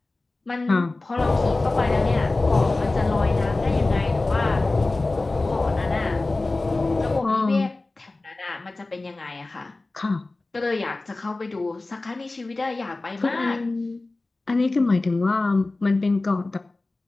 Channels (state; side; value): quieter; right; 3.1 dB